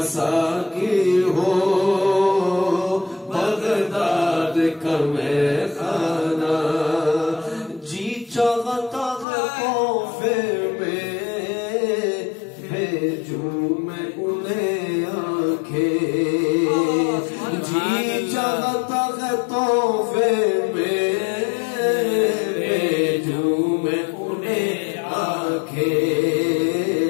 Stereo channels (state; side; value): drops out; right; at 9.2 s